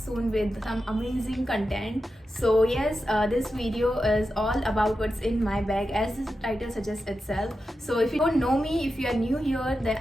with some amazing content. So yes, this video is all about what's in my bag, as the title suggests itself. So if you don't know me, if you are new here, then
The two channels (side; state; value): both; normal; correlation 0.90